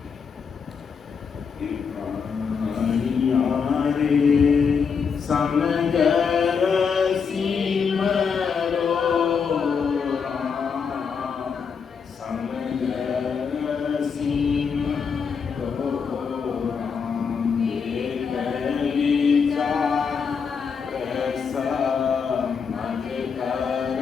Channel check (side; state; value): right; quieter; 6.1 dB